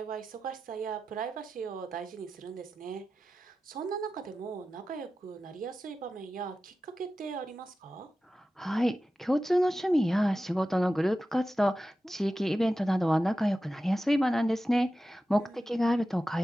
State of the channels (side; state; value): both; normal; correlation 0.93